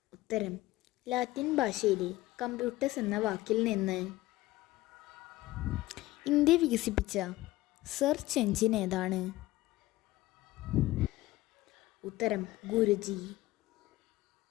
ഉത്തരം ലാറ്റിൻ ഭാഷയിലെ കമ്പ്യൂട്ടേഴ്സ് എന്ന വാക്കിൽ നിന്ന്. ഇന്ത്യ വികസിപ്പിച്ച സെർച്ച് എഞ്ചിൻ ഏതാണ്? ഉത്തരം ഗുരുജി.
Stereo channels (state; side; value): quieter; right; 17.8 dB